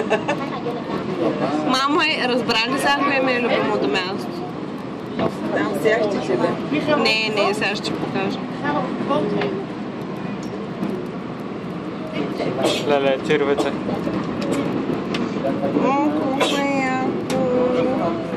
Мамо, разбрали сега кое ми е любимото място? Там сега ще ти да. Не, сега ще покажа. Леле, тировете. Колко е яко.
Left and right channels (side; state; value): both; identical; correlation 1.00